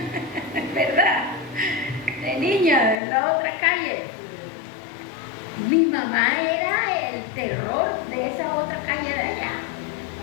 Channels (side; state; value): right; drops out; at 3.0 s